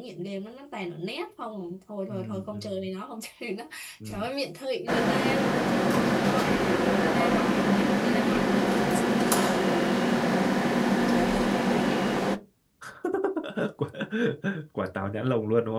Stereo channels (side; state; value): both; identical; correlation 1.00